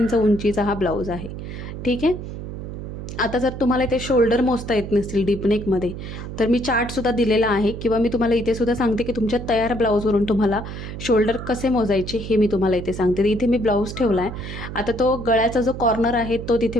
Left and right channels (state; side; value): noise; right; hum, 8 dB below the sound